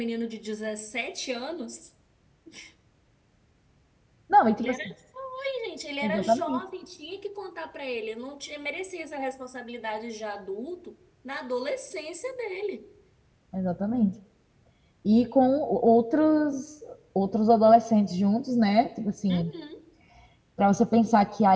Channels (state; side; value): identical; both; correlation 1.00